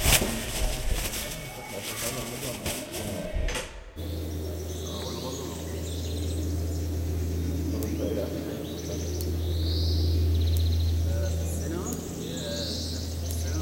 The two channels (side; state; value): both; identical; correlation 1.00